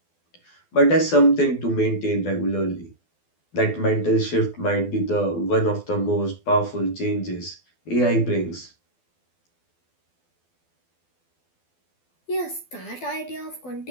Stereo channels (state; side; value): late; right; 12 ms